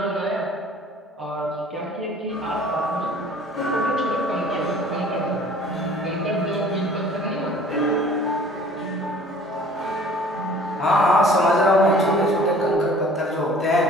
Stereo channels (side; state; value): both; normal; correlation 0.50